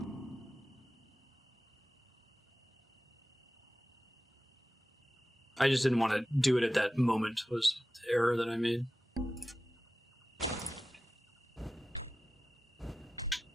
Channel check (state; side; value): normal; both; correlation 0.94